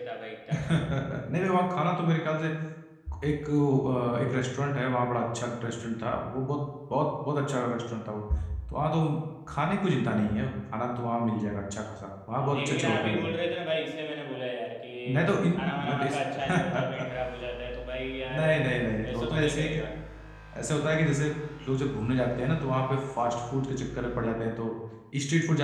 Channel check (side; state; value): both; identical; correlation 1.00